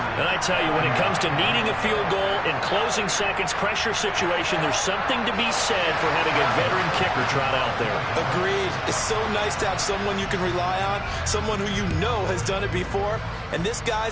And I tell you, when it comes to needing a field goal in closing seconds, pressure situation, there's something to be said for having a veteran kicker trot out there. Agreed. It's so nice to have someone you can rely on, someone who you know has done it before. And this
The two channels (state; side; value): identical; both; correlation 1.00